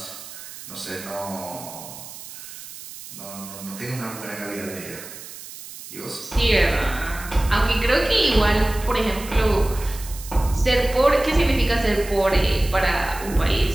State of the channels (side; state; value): right; noise; hiss, 14 dB below the sound